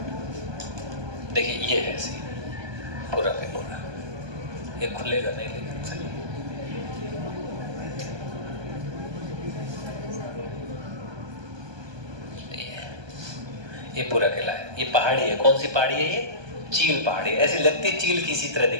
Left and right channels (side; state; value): left; late; 1.2 ms